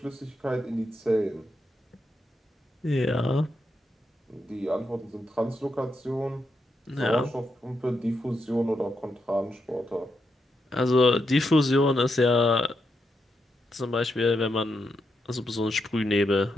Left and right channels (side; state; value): both; normal; correlation 0.83